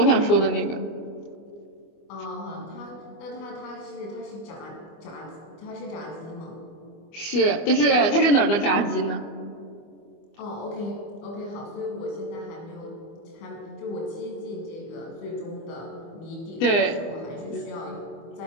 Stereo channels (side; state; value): right; late; 25 ms